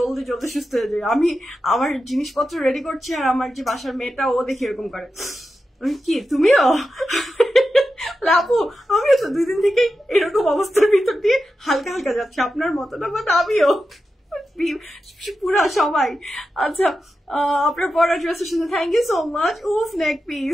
জলদি সুস্থ হয়ে যাই। আমি আমার জিনিসপত্র রেডি করছি, আর আমার যে বাসার মেয়েটা ও দেখি এরকম করে, কি তুমিও? আপু আমিও তো 2 দিন থেকেই এরকম অবস্থার ভিতর দিয়ে হালকা হালকা যাচ্ছে, আপনার মতো না, বাট আমিও পুরা সবাই। আচ্ছা আপনার পড়া ড্রেসের সাথে থ্যাংক ইউ সো মাচ। উফ নেক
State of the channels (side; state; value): both; normal; correlation 0.90